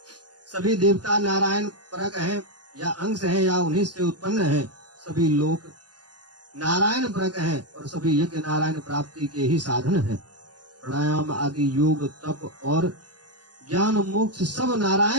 सभी देवता नारायण परक हैं, या अंश हैं या उन्हीं से उत्पन्न हैं। सभी लोक नारायण परक हैं और सभी यज्ञ नारायण प्राप्ति के ही साधन हैं। प्राणायाम आदि योग तप और ज्ञान मोक्ष सब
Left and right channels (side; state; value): left; late; 0.69 ms